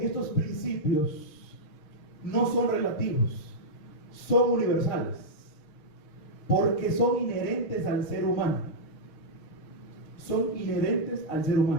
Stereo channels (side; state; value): right; late; 6.4 ms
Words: y estos principios no son relativos, son universales, porque son inherentes al ser humano. Son inherentes al ser